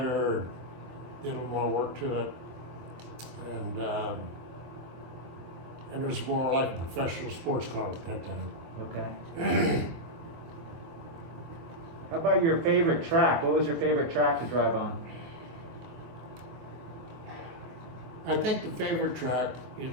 did a little more work to it. And it was more like a professional sports car at that time. Okay. How about your favorite track? What was your favorite track to drive on? I think the favorite track,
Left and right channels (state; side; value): late; left; 24 ms